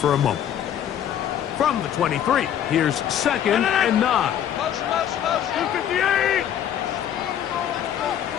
a moment. From the 23, here's 2nd and 9.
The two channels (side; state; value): right; quieter; 10.1 dB